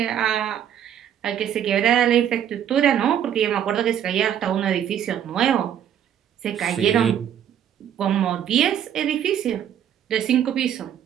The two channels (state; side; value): quieter; left; 9.7 dB